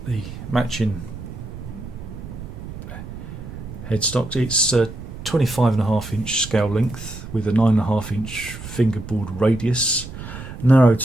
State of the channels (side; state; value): right; noise; rumble, 11 dB below the sound